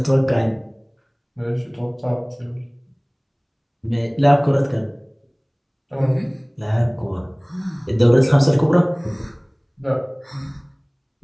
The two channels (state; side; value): identical; both; correlation 1.00